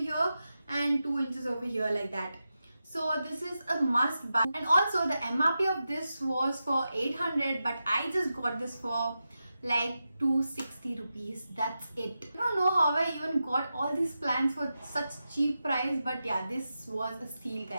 and 2 inches over here, like that. So this is a must buy. And also the MRP of this was for 800, but I just got this for like 260 rupees. That's it. I don't know how I even got all these plants for such cheap price, but yeah, this was a steal,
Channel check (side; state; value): both; inverted; correlation -0.90